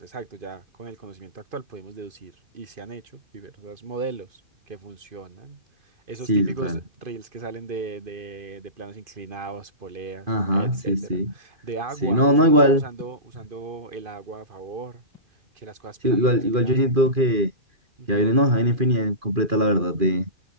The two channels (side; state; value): left; late; 2.5 ms